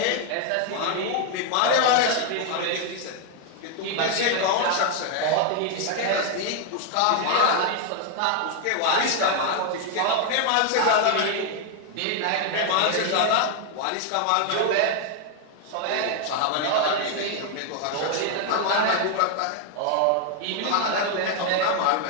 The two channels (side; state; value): both; different; correlation 0.00